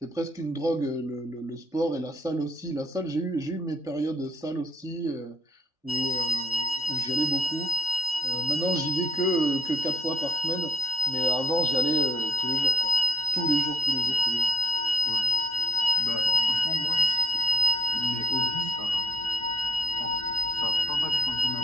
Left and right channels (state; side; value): normal; both; correlation 0.65